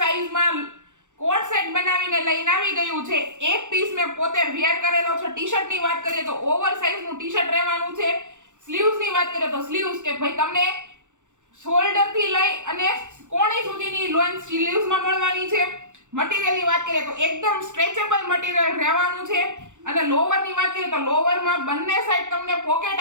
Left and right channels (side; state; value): left; late; 0.85 ms